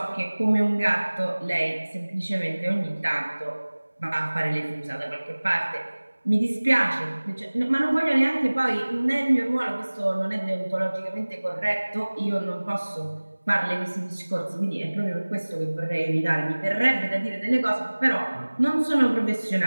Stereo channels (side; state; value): both; inverted; correlation -1.00